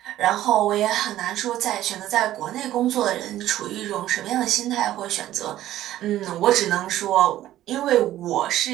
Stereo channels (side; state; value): left; quieter; 13.6 dB